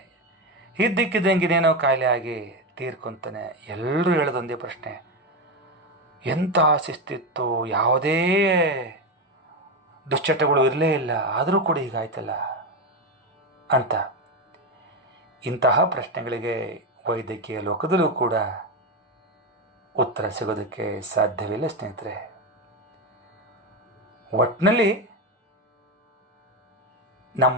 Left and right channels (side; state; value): both; normal; correlation 0.13